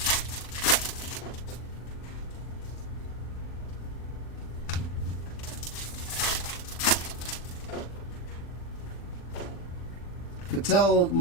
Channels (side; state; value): right; late; 40 ms